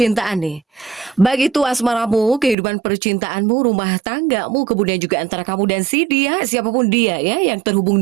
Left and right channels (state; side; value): drops out; left; at 2.6 s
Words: nih. Baik itu asmaramu, kehidupan percintaanmu, rumah tanggamu, kemudian juga antara kamu dan si dia, siapapun dia ya, yang terhubung